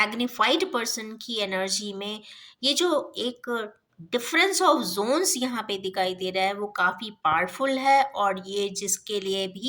पर्सन की एनर्जी में, ये जो एक डिफरेंस ऑफ जोन्स यहाँ पे दिखाई दे रहा है वो काफ़ी पावरफुल है। और ये जिसके लिए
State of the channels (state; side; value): identical; both; correlation 1.00